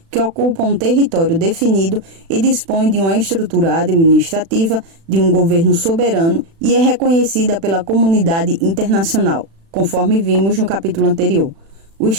que ocupa um território definido e dispõe de uma estrutura administrativa, de um governo soberano e é reconhecida pela comunidade internacional, conforme vimos no capítulo anterior. O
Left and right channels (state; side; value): late; left; 36 ms